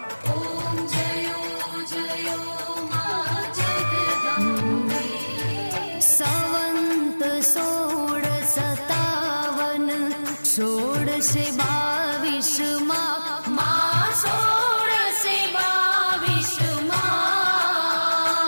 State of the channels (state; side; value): inverted; both; correlation -1.00